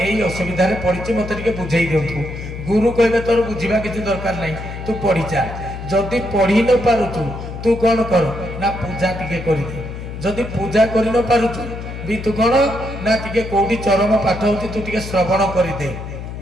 असुविधा रे पड़िछि मते टिके बुझेई दियंतु गुरु कहबे तोर बुझीबा किछि दरकार नहीं तू पढ़ी चा जदि पढ़ी न पारुछु तू कौन कर ना पूजा टिके करि दे जदि पूजा करि न पारुछु भी तू कौन ना टिके कोडी चरम पाठ होछि तू टिके श्रवण करि दे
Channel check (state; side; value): noise; left; hum, 9 dB below the sound